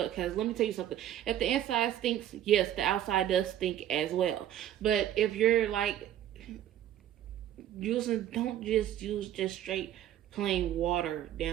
let me tell you something, if the inside stinks, yes, the outside does stink as well. But if you're like don't just use just straight plain water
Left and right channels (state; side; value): quieter; left; 11.6 dB